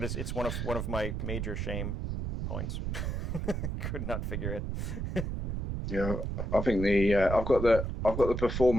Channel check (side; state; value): right; noise; rumble, 3 dB below the sound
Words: it's one of my major shame points. Could not figure it. Yeah, I think I've got the